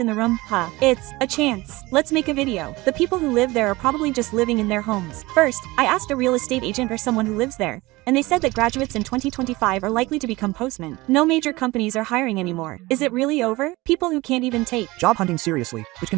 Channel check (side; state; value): left; quieter; 20.9 dB